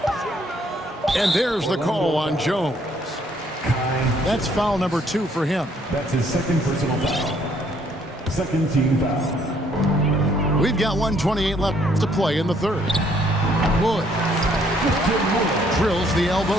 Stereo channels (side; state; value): both; normal; correlation 0.66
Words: And there's the call on Jones. That's foul number 2 for him. That's his second personal foul. Second team foul. We've got 1:28 left to play in the third. Wood drills the